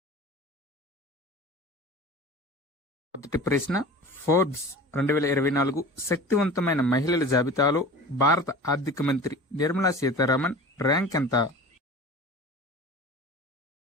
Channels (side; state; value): both; normal; correlation 0.37